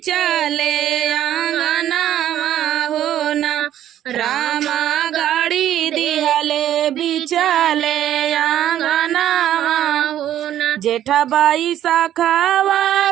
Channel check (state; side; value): quieter; left; 11.6 dB